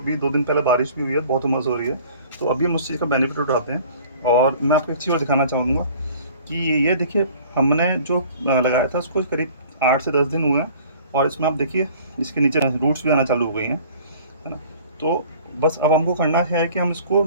2 दिन पहले बारिश भी हुई है, बहुत हुमस हो रही है, तो अभी हम उस चीज़ का बेनिफिट उठाते हैं। और मैं आपको एक चीज़ और दिखाना चाहूँगा कि ये देखिए, हमने जो लगाया था उसको करीब 8 से 10 दिन हुए हैं, और इसमें आप देखिए इसके नीचे रूट्स भी आना चालू हो गई हैं, है ना। तो बस अब हमको करना है कि हम इसको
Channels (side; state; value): both; inverted; correlation -0.50